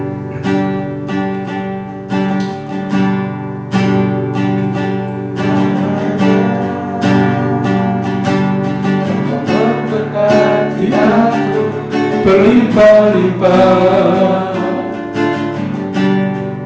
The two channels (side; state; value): both; identical; correlation 1.00